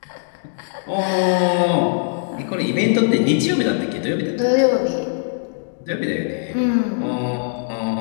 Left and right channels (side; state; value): right; silent; digital silence